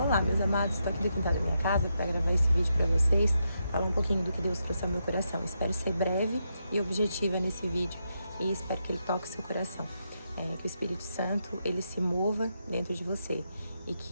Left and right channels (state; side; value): inverted; both; correlation -0.83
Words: Olá, meus amados, estou aqui do quintal da minha casa para gravar esse vídeo para vocês, falar um pouquinho do que Deus trouxe ao meu coração. Espero ser breve e objetiva nesse vídeo e espero que ele toque o seu coração. Que o Espírito Santo, ele se mova dentro de você e